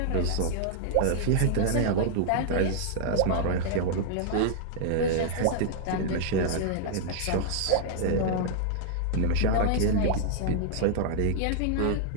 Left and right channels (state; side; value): different; both; correlation -0.01